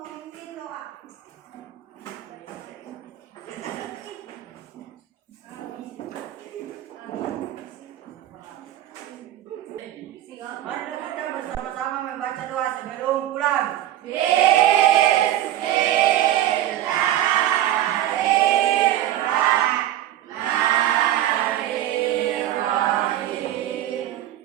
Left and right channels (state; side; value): quieter; left; 12.9 dB